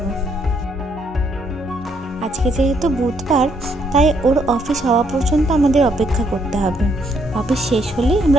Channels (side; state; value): both; normal; correlation 0.71